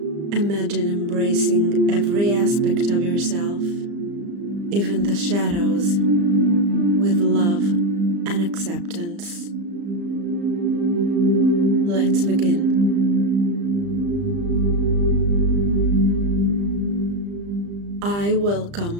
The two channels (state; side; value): late; left; 35 ms